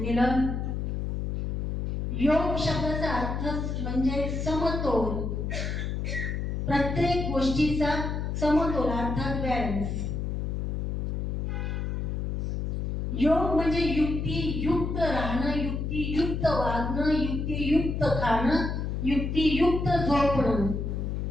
योग शब्दाचा अर्थ म्हणजे समतोल. प्रत्येक गोष्टीचा समतोल अर्थात बॅलन्स. योग म्हणजे युक्तियुक्त राहणं, युक्तियुक्त वागणं, युक्तियुक्त खाणं, युक्तियुक्त झोपणं.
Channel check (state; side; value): noise; left; hum, 2 dB below the sound